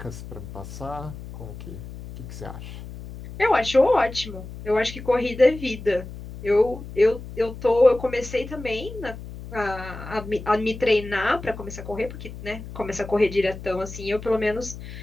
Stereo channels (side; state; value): left; noise; hum, 12 dB below the sound